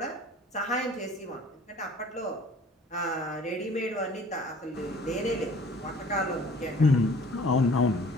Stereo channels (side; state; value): both; normal; correlation 0.50